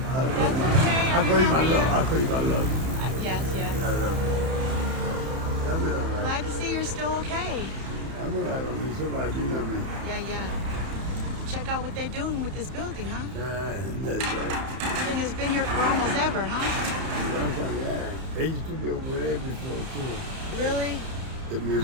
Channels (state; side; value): late; left; 31 ms